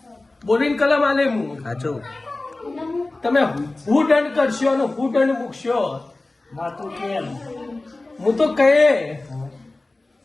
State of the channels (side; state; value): right; quieter; 3.0 dB